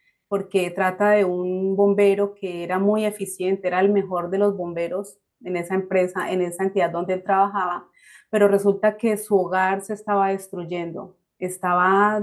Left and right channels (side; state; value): both; identical; correlation 1.00